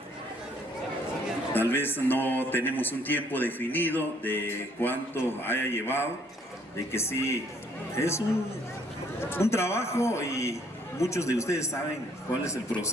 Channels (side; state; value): both; normal; correlation 0.64